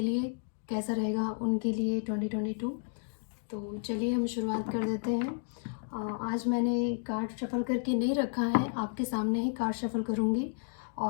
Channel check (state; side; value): silent; right; 56 dB below the other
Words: लिए कैसा रहेगा उनके लिए 2022। तो चलिए हम शुरुआत कर देते हैं। आज मैंने कार्ड शफल करके नहीं रखा है, आपके सामने ही कार्ड शफल करूँगी।